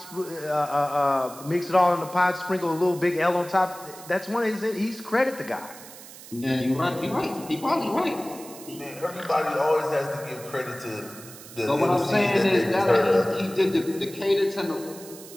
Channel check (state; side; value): noise; right; hiss, 17 dB below the sound